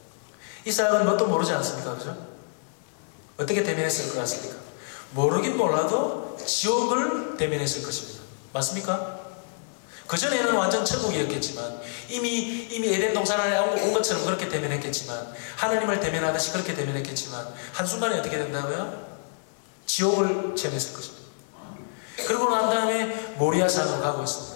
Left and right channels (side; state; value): right; silent; digital silence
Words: 이삭은 뭣도 모르지 않습니까? 그죠? 어떻게 대면했을 것 같습니까? 모르긴 몰라도 지옥을 대면했을 것입니다. 맞습니까? 그전에는 완전 천국이었겠지만 이미 에덴 동산 안에 온 것처럼 그렇게 대면했겠지만 하나님을 대면하듯이 그렇게 대면했겠지만 한순간에 어떻게 된다고요? 지옥을 체험했을 것입니다. 그러고 난 다음에 모리아산으로 가고